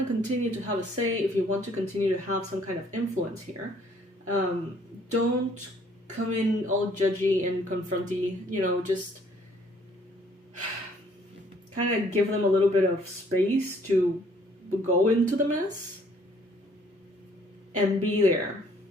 continue to have a say, if you want to continue to have some kind of influence here, don't come in all judgy and confronty, just kind of give them a little bit of space to go into the mess. And be there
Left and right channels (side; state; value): both; normal; correlation 0.62